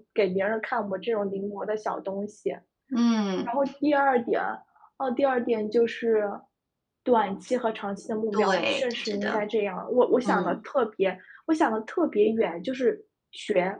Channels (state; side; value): identical; both; correlation 1.00